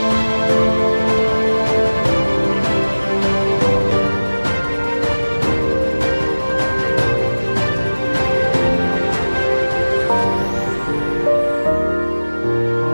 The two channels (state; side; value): inverted; both; correlation -1.00